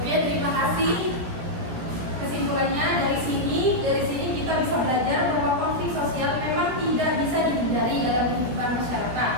Oke, terima kasih. Kesimpulannya dari sini kita bisa belajar bahwa konflik sosial memang tidak bisa dihindari dalam kehidupan masyarakat.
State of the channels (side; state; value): left; late; 17 ms